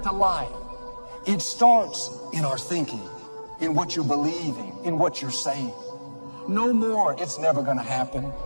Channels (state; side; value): inverted; both; correlation -1.00